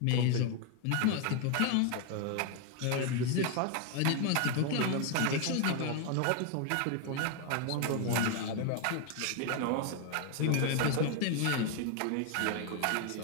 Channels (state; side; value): different; both; correlation 0.01